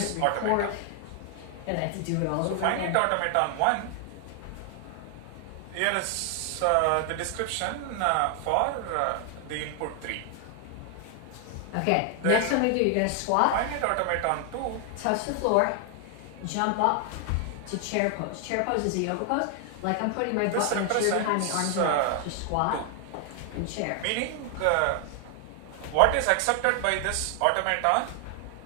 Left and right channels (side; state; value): both; different; correlation 0.00